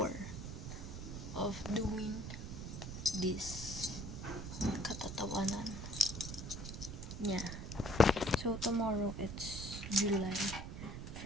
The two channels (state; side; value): noise; right; rumble, 7 dB below the sound